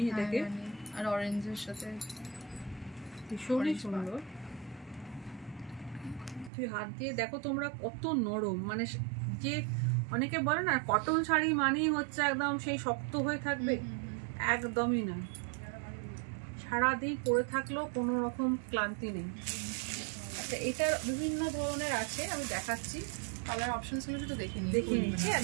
এটাকে, আর অরেঞ্জের সাথে ভীষণই সুন্দর। তুই হাত দিয়ে দেখো তোমরা কত নরম, মানে যে অনেকে বলে না কটন শাড়ি মানেই হচ্ছে একদম সেই শক্ত হয়ে থাকবে, একদমই না। সারাদিন পরে থাকলেও কোনো রকম ক্লান্তি নেই। আচ্ছা, এটার বিভিন্ন ধরনের আছে, আমি দেখাচ্ছি। কালার অপশনস গুলো তো দেখে নিচ্ছি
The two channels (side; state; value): left; drops out; at 6.5 s